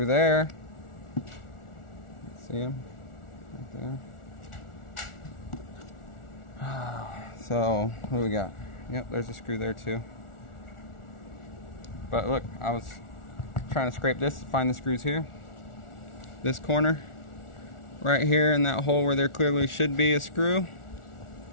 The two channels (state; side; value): late; right; 1.4 ms